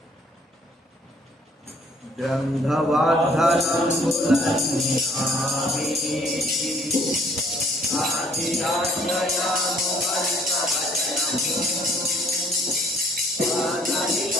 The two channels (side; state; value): both; normal; correlation 0.60